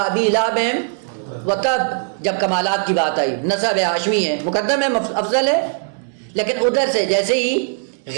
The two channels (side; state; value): left; silent; digital silence